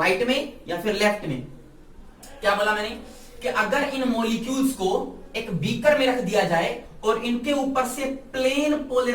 में या फिर लेफ्ट में। क्या बोला मैंने, कि अगर इन मॉलिक्यूल्स को एक बीकर में रख दिया जाए और इनके ऊपर से plane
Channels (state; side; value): identical; both; correlation 1.00